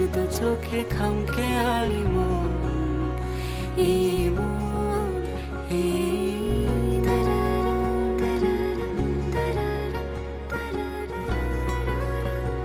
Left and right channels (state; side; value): identical; both; correlation 1.00